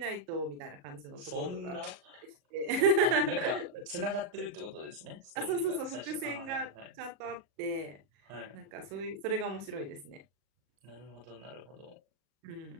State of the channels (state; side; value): late; left; 37 ms